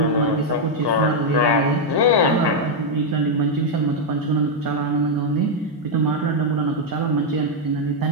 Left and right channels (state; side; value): normal; both; correlation 0.00